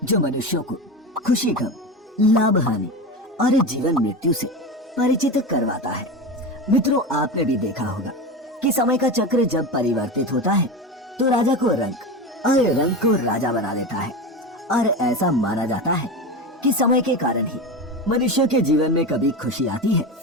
जो मनुष्यों को खुशी, गम, लाभ, हानि और जीवन मृत्यु से परिचित करवाता है। मित्रों, आपने भी देखा होगा कि समय का चक्र जब परिवर्तित होता है तो राजा को रंक और रंक को राजा बना देता है। और ऐसा माना जाता है कि समय के कारण ही मनुष्य के जीवन में कभी खुशी आती है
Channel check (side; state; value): both; normal; correlation 0.23